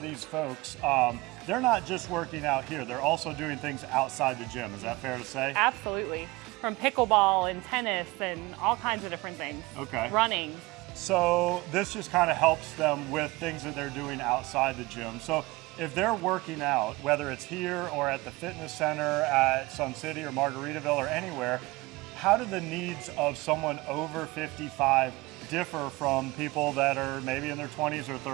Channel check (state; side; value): quieter; left; 22.0 dB